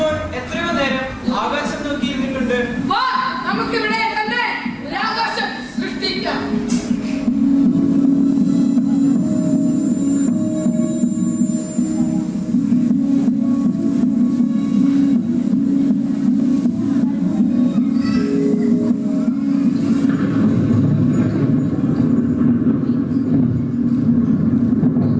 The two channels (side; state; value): both; identical; correlation 1.00